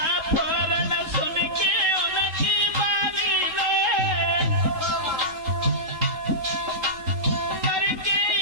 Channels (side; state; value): left; late; 3.7 ms